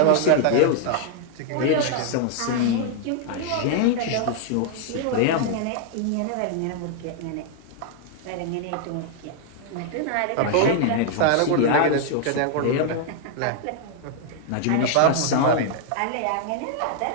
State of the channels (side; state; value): both; different; correlation 0.00